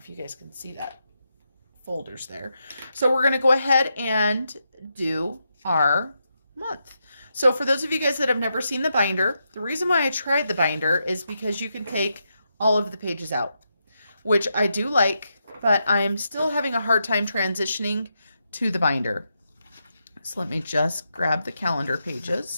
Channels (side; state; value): both; inverted; correlation -0.84